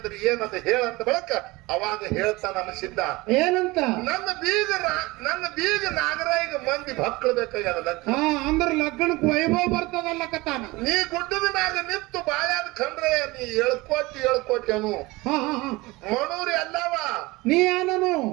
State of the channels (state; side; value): quieter; left; 21.9 dB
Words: ಏನಂತ ಹೇಳಂತ ಬಳಕ ಅವಾಗ ಹೇಳ್ತಾನ ಅನಿಸಿದ್ದ. ಏನಂತ? ನನ್ನ ಬೀಗ ನಾಗರಾಯಿಗೆ ಮಂದಿ ಭಕ್ಳು ಬೇಕಾಗ್ಯದ. ಅಂದ್ರ ಲಗ್ನಕ್ ವೈಭವ ಬರ್ತದಲ್ಲ ಕತಾನ. ನೀ ಗುಡ್ಡದ ಮ್ಯಾಗ ನಿಂತು ಬಾಳ್ಯಾದ ಖಂಡ್ರಯ್ಯ ನೀ ಹೇಳ್ಕೊಟ್ಟಿ ಅನು. ಮಣೂರಿ ಅಲ್ಲವ ನೀ ಏನನು?